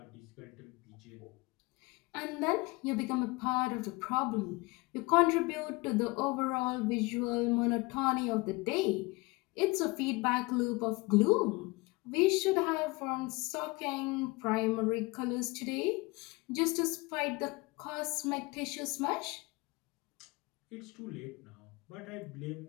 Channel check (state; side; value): quieter; right; 24.6 dB